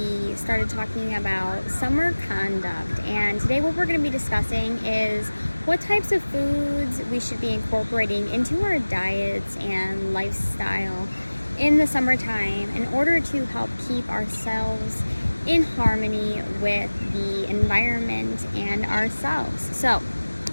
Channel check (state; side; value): inverted; both; correlation -1.00